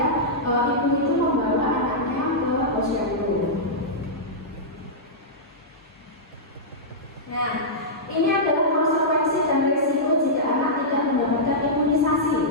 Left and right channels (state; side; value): normal; both; correlation -0.11